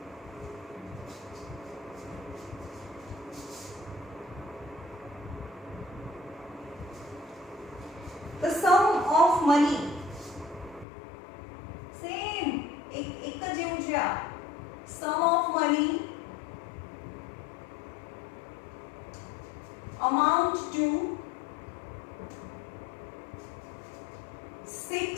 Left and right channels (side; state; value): right; drops out; at 10.9 s